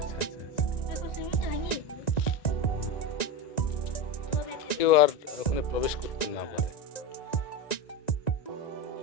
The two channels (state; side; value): late; right; 1.9 ms